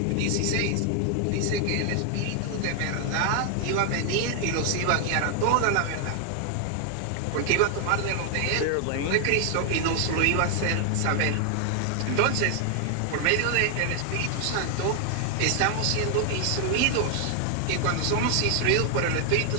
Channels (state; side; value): different; both; correlation 0.00